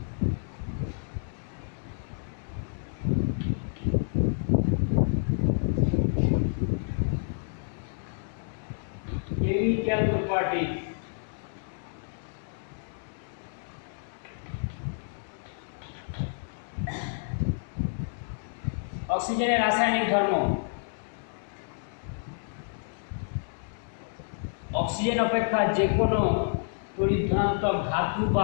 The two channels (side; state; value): right; silent; 58 dB below the other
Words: Chemical properties. অক্সিজেনের রাসায়নিক ধর্ম। অক্সিজেন অপেক্ষা যে কোনো তড়িৎ ধনাত্মক ধাতু বা